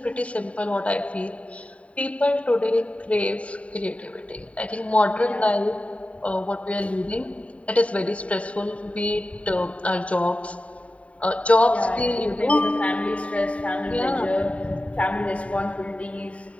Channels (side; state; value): right; late; 0.066 ms